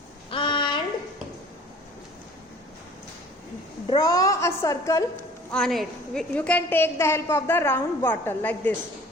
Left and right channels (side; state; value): both; normal; correlation 0.49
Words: and draw a circle on it. You can take the help of the round bottle like this.